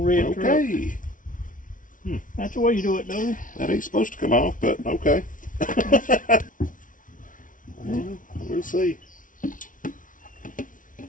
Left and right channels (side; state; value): right; late; 0.38 ms